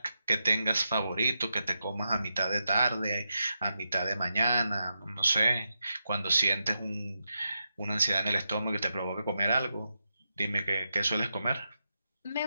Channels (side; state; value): both; inverted; correlation -0.86